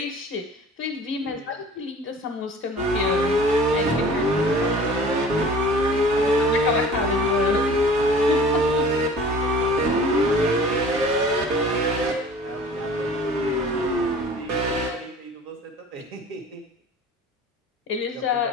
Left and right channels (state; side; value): normal; both; correlation 0.45